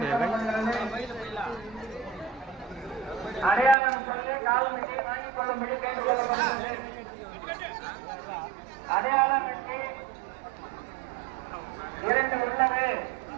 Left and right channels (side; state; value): left; drops out; at 3.8 s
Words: சேவை அடையாளம் சொல்லி கால்மட்டி வாங்கிக் கொள்ளும்படி கேட்டுக்கொள்ளப்படுகிறது. அடையாளம் கட்டி 2 உள்ளது.